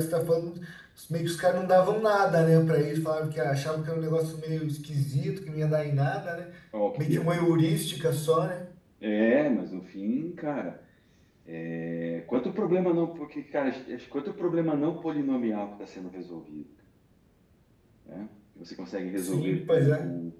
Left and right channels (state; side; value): identical; both; correlation 1.00